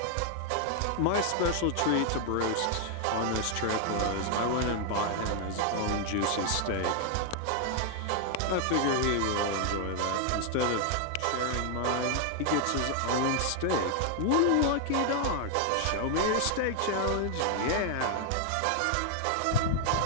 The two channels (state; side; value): different; both; correlation 0.00